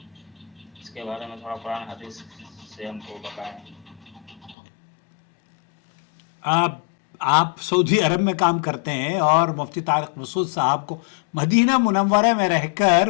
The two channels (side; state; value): right; drops out; at 4.5 s